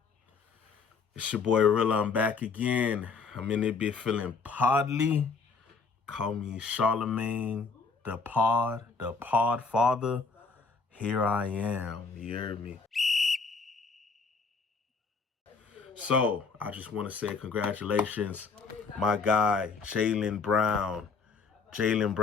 It's your boy Reela. I'm back again. I'm in it bit feeling podly. Call me Charlemagne, the pod father. Here I am. You heard me? So, I just want to say congratulations, my guy, Jaylen Brown. Jaylen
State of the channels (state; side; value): quieter; right; 4.8 dB